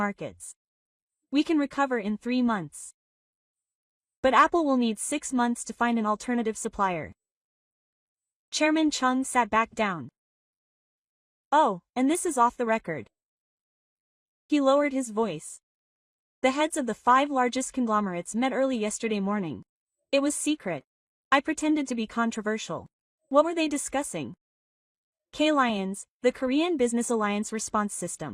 We can recover in 3 months. But Apple will need 6 months to find an alternative supplier. Chairman Chung sat back down. Oh, and this is off the record. He lowered his voice. The heads of the 5 largest conglomerates met early yesterday morning. It was secret. I pretended to be controversial. What were they discussing? K-Lions, the Korean Business Alliance response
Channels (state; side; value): identical; both; correlation 1.00